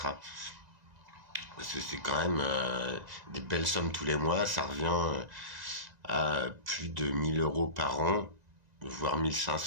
Parce que c'est quand même des belles sommes tous les mois, ça revient à plus de 1000 euros par an, voire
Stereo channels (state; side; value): late; left; 1.9 ms